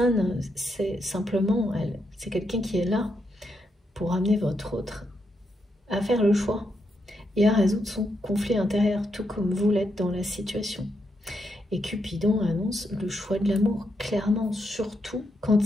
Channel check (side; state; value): both; normal; correlation 0.81